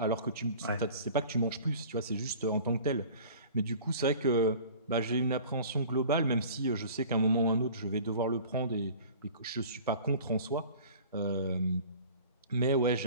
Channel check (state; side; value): inverted; both; correlation -0.45